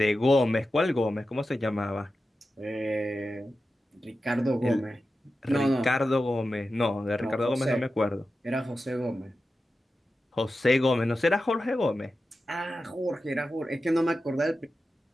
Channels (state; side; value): normal; both; correlation 0.92